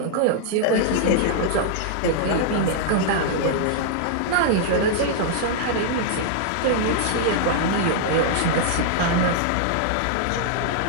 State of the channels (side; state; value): both; different; correlation -0.01